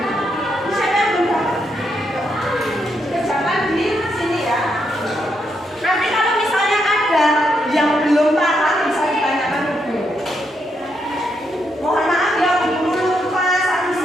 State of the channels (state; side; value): normal; both; correlation 0.79